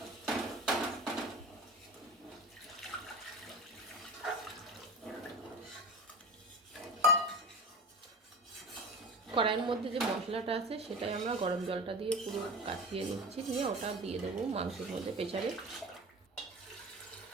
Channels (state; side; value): normal; both; correlation 0.32